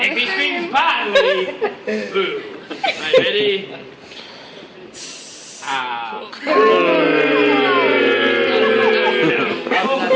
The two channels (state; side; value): identical; both; correlation 1.00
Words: he screams badly, boo. Right, ready? Ow.